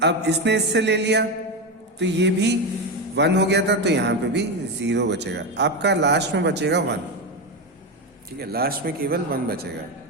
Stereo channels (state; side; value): normal; both; correlation 0.14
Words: अब इसने इससे ले लिया तो ये भी 1 हो गया था, तो यहाँ पे भी 0 बचेगा। आपका लास्ट में बचेगा 1, ठीक है, लास्ट में केवल 1 बचेगा।